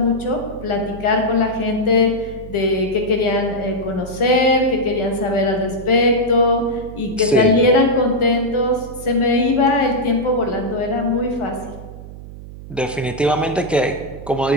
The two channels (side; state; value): right; noise; hum, 14 dB below the sound